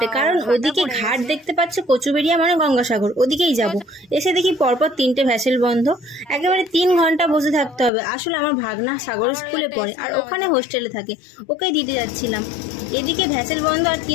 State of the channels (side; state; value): right; drops out; at 7.9 s